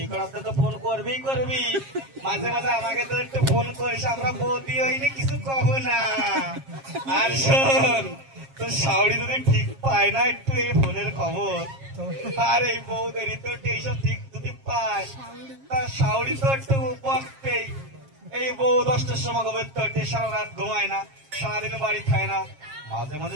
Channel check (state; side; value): late; left; 7.4 ms